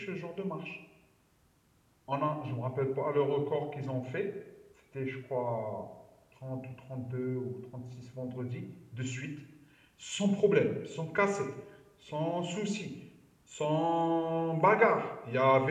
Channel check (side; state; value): both; identical; correlation 1.00